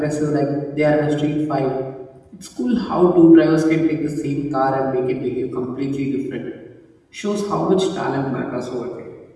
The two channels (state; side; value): identical; both; correlation 1.00